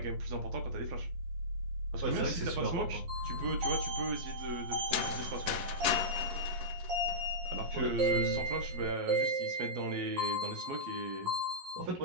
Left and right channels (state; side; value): late; left; 11 ms